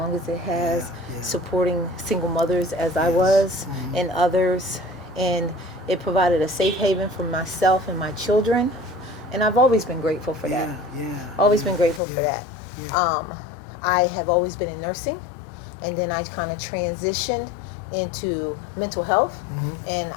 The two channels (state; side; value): drops out; right; at 12.0 s